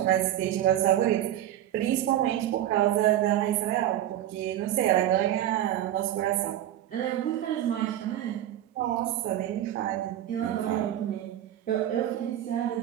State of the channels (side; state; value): left; quieter; 12.3 dB